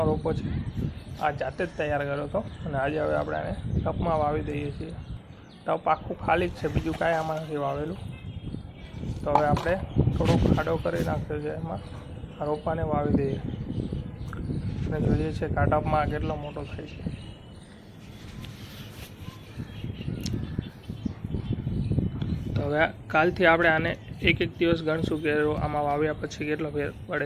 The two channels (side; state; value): both; identical; correlation 1.00